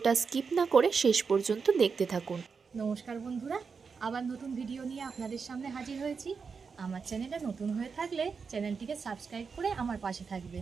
স্কিপ না করে শেষ পর্যন্ত দেখতে থাকুন। নমস্কার বন্ধুরা, আবার নতুন ভিডিও নিয়ে আপনাদের সামনে হাজির হয়েছি। আমার চ্যানেলে নতুন হয়ে থাকলে চ্যানেলটিকে সাবস্ক্রাইব করে আমার পাশে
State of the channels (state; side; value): quieter; left; 5.5 dB